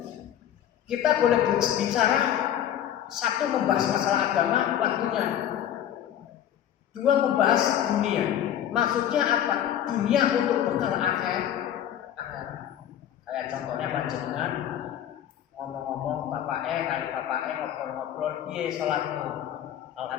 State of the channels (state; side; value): quieter; right; 10.7 dB